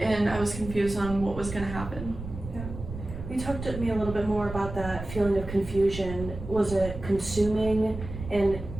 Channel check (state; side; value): noise; right; rumble, 10 dB below the sound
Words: I was confused on what was gonna happen. You talked to me a little bit more about that feeling of confusion. Was it consuming and